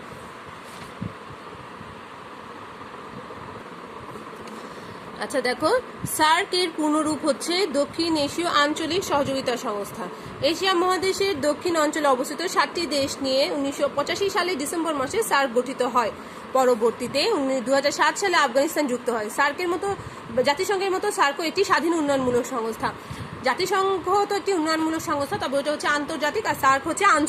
আচ্ছা দেখো, সার্ক এর পূর্ণরূপ হচ্ছে দক্ষিণ এশীয় আঞ্চলিক সহযোগিতা সংস্থা। এশিয়া মহাদেশের দক্ষিণ অঞ্চলে অবস্থিত 7টি দেশ নিয়ে 1985 সালে ডিসেম্বর মাসে সার্ক গঠিত হয়। পরবর্তীতে 2007 সালে আফগানিস্তান যুক্ত হয়। জাতিসংঘের মতো সার্কও একটি স্বাধীন উন্নয়নমূলক সংস্থা। জাতিসংঘ তো একটি উন্নয়নমূলক সংস্থা, তবে ওটা হচ্ছে আন্তর্জাতিক, আর সার্ক হচ্ছে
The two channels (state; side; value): identical; both; correlation 1.00